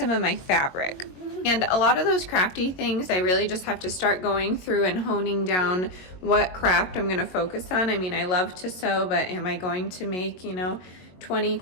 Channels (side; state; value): right; late; 22 ms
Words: of my fabric. And a lot of those crafty things, I really just have to start going through and honing down what craft I'm going to focus on. I mean, I love to sew, but am I going to make, 20